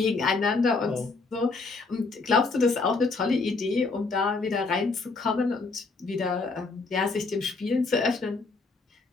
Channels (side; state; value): right; quieter; 3.9 dB